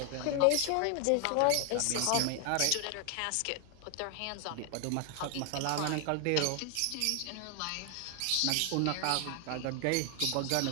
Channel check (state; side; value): different; both; correlation 0.00